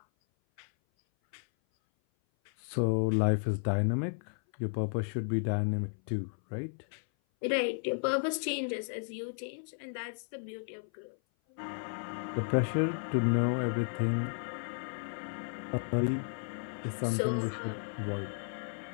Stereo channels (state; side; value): silent; right; 55 dB below the other